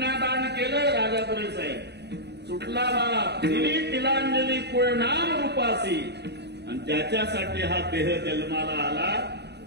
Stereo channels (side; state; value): left; late; 0.49 ms